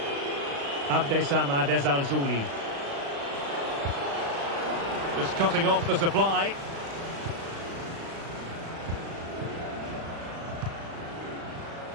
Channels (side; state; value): left; late; 36 ms